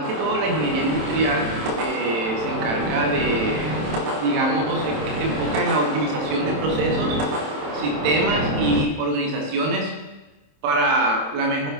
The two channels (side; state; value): left; late; 27 ms